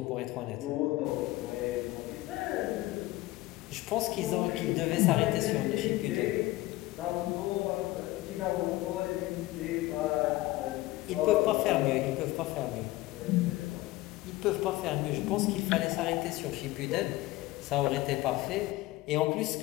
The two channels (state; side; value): quieter; right; 18.2 dB